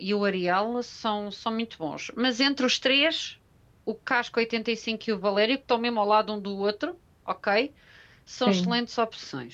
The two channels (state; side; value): identical; both; correlation 1.00